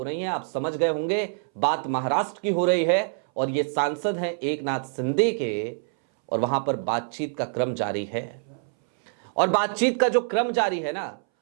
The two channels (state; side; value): silent; left; 61 dB below the other